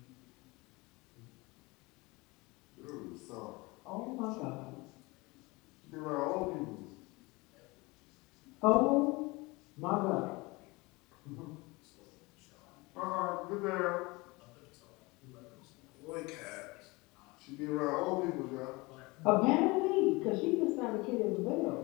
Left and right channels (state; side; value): quieter; right; 24.2 dB